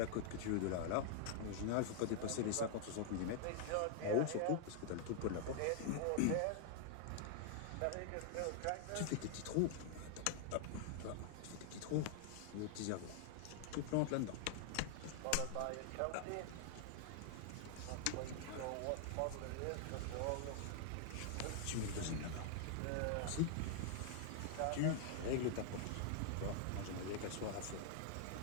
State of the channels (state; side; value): different; both; correlation 0.00